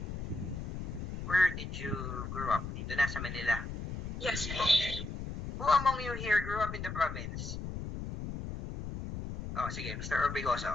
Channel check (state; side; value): noise; left; rumble, 6 dB below the sound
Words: where did you grow up? Dito na sa Manila. Yes po. Who among you here grew up in the province? Oh, sige, Mr. Orbigoso.